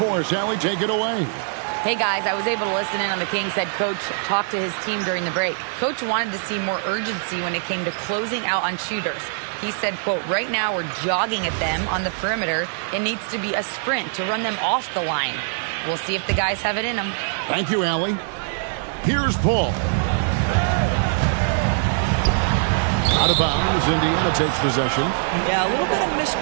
us. Allie, take it away. Hey, guys, I was able to listen in on the Kings head coach talk to his team during the break. Coach wanted to see more urgency when it came to closing out on shooters. He said, quote, right now we're jogging at them on the perimeter. It needs to be a sprint to run them off the line. We'll see if the guys have it in them. Thank you, Allie. Here's Paul. Out of bounds, Indiana takes possession. Yeah, a little bit of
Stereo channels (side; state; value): left; silent; 64 dB below the other